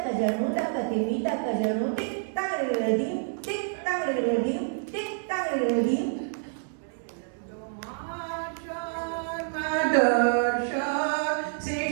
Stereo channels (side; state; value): left; silent; digital silence